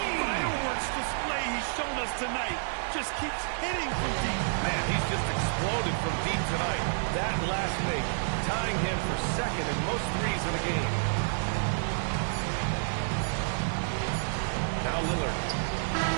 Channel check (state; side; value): silent; left; digital silence